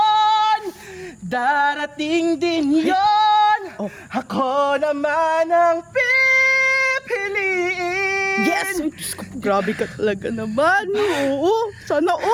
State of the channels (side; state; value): both; identical; correlation 1.00